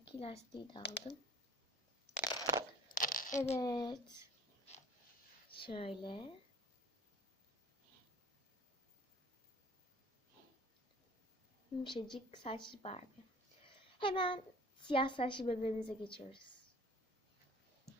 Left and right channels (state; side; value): normal; both; correlation 0.49